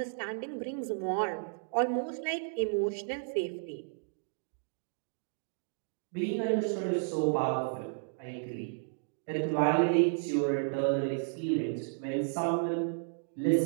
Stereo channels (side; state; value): left; silent; digital silence